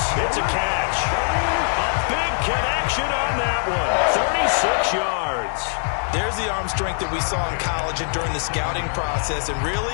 it's a catch. A big connection on that one. 36 yards. There's the arm strength that we saw in college and during the scouting process. And really,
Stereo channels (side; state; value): right; silent; 64 dB below the other